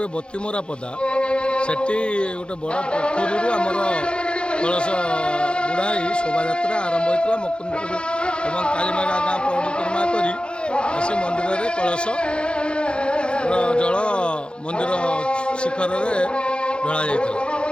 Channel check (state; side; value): late; right; 0.054 ms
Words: बतीमरा पदा सेठी गोटे बड़ पोखरी आमर कलश बुढ़ाई शोभा यात्रा आरंभ होता मुकुंदपुर एवं कालीमेघा गाँ परिक्रमा कर मंदिर में कलश जल मंदिर शिखर में ढला जाता